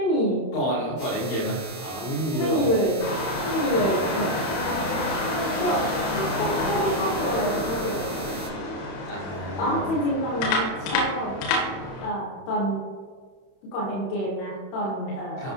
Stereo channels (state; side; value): late; right; 31 ms